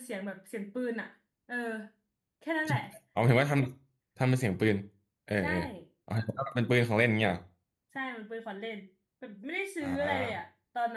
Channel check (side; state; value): both; identical; correlation 1.00